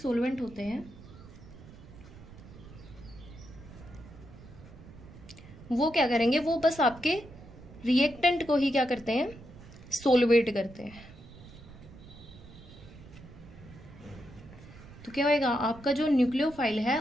होते हैं वो क्या करेंगे, वो बस आपके रिएक्टेंट को ही क्या करते हैं सोलवेट करते हैं। तो क्या होगा आपका जो न्यूक्लियोफाइल है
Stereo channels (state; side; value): noise; right; rumble, 18 dB below the sound